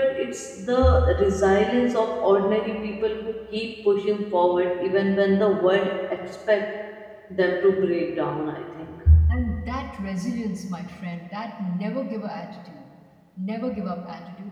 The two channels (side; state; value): both; identical; correlation 1.00